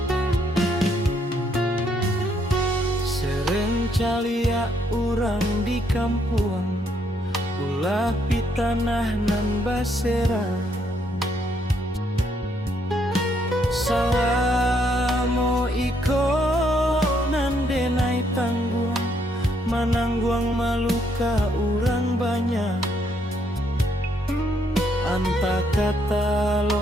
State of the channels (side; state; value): both; normal; correlation 0.72